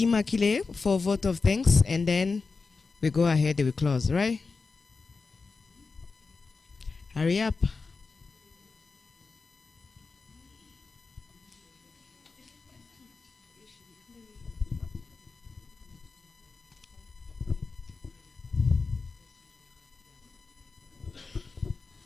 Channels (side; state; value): right; quieter; 4.4 dB